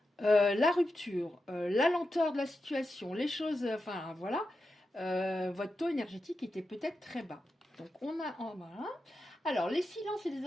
la rupture, la lenteur de la situation, les choses, enfin voilà, votre taux énergétique était peut-être très bas. Donc on a, voilà. Alors les silences et les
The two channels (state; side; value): normal; both; correlation 0.89